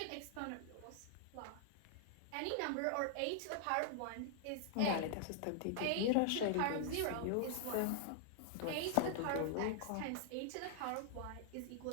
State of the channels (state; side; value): different; both; correlation -0.01